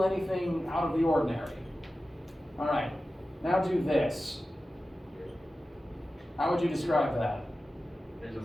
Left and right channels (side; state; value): both; normal; correlation 0.94